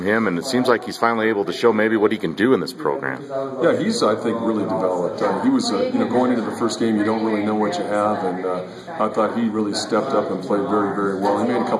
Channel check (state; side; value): identical; both; correlation 1.00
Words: him? And it seems like he's finally able to show maybe what he can do in this program. Yeah, he's, I think, really developed. He was, going into the first game, you don't really know what you have, and I thought he really stepped up and played very, very well. He made a